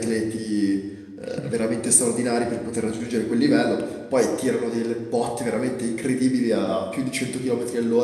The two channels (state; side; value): identical; both; correlation 1.00